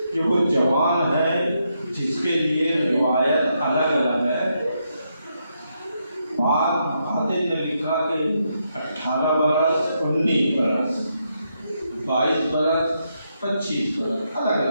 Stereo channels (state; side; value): inverted; both; correlation -0.80